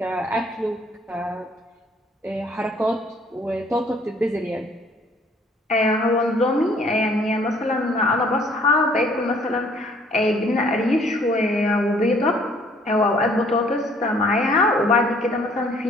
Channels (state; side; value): normal; both; correlation 0.60